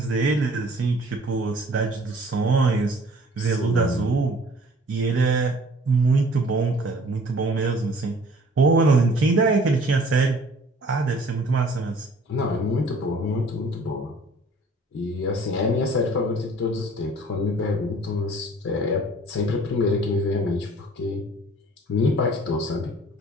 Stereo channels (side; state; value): both; normal; correlation 0.52